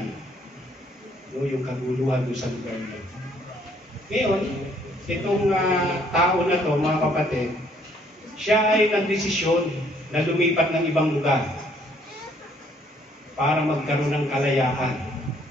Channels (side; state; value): both; normal; correlation 0.64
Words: no, yung kaguluhan doon sa lugar niya. Ngayon, itong tao na to, mga kapatid, siya ay nagdesisyon na lumipat ng ibang lugar para magkaroon ng kalayaan.